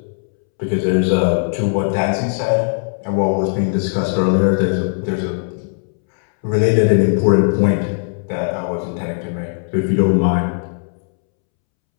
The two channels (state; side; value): silent; right; 67 dB below the other